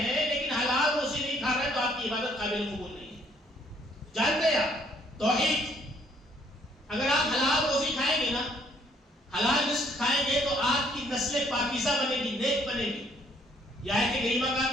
ہیں لیکن حلال روزی نہیں کھا رہے تو آپ کی عبادت قابل قبول نہیں ہے. جانتے ہیں آپ، توحید، اگر آپ حلال روزی کھائیں گے نا، حلال رزق کھائیں گے تو آپ کی نسل پاکیزہ بنے گی، نیک بنے گی. یہ آیت کریمہ کا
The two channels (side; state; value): both; normal; correlation 0.65